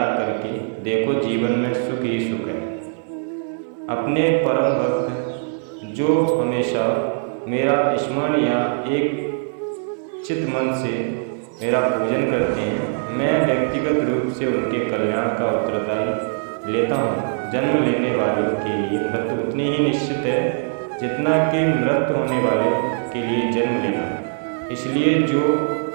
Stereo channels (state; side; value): silent; left; digital silence